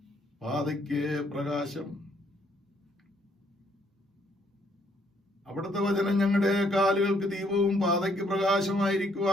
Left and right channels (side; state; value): both; normal; correlation 0.68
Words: പാതയ്ക്ക് പ്രകാശം. അവിടുത്തെ വചനം ഞങ്ങളുടെ കാലുകൾക്ക് ദീപവും പാതയ്ക്ക്